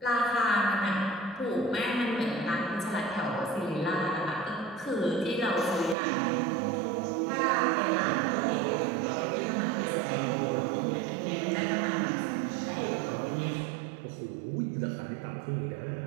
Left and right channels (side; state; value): left; drops out; at 6.0 s